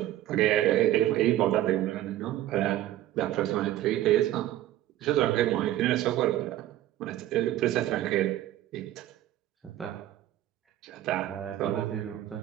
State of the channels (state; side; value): quieter; left; 13.7 dB